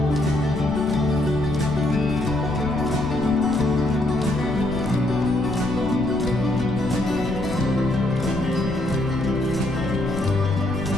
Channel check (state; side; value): noise; left; rumble, 8 dB below the sound